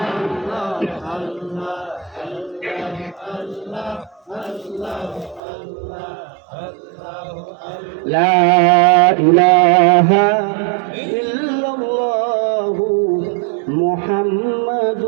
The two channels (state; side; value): drops out; left; at 5.4 s